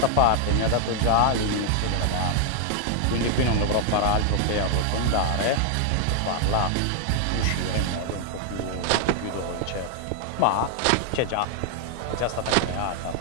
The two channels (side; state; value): both; different; correlation 0.00